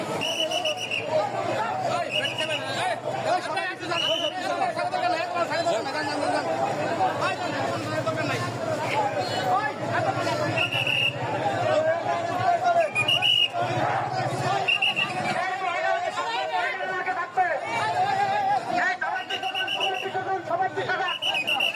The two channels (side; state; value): both; identical; correlation 1.00